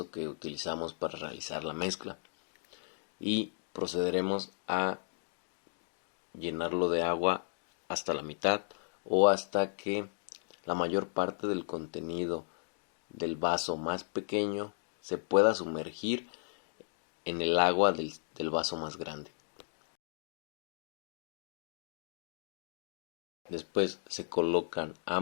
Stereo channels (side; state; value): right; silent; digital silence